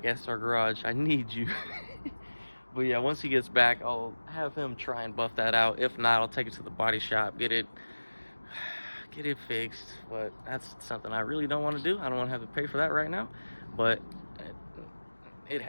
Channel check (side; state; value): both; inverted; correlation -1.00